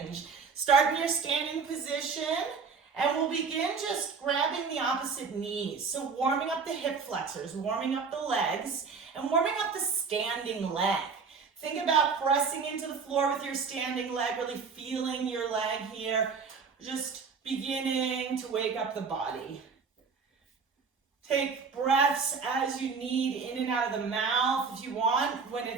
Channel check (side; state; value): left; quieter; 5.3 dB